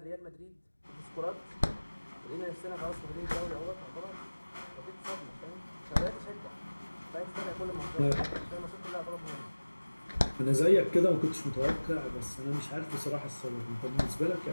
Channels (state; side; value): inverted; both; correlation -1.00